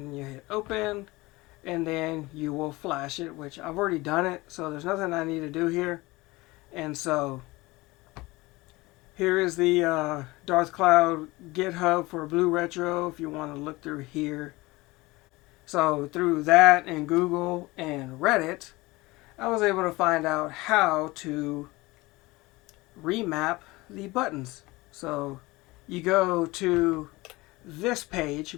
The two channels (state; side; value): quieter; right; 21.6 dB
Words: then you hit open, and then you will flash it, which I've already done it, so there's nothing I need to do here. And so here is the Darth Cloud GitHub for BlueRetro if you want to look through here. So through that and Google and Reddit, I was able to find out how to remap the buttons. So you go to this page,